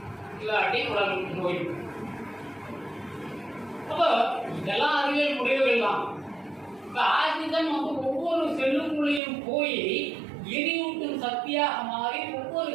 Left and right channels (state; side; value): drops out; left; at 9.2 s